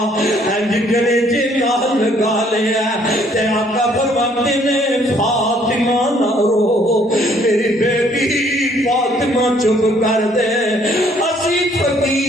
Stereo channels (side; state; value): both; normal; correlation 0.63